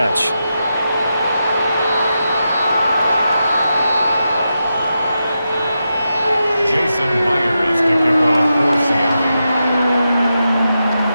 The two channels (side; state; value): both; inverted; correlation -0.87